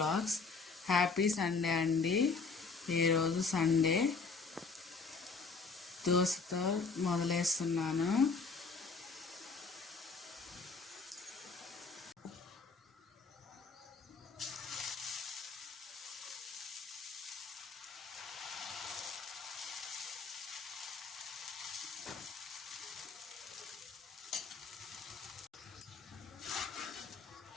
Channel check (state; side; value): quieter; right; 4.6 dB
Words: Happy Sunday అండి. ఈరోజు సండే. దోశతో మొదలేస్తున్నాను.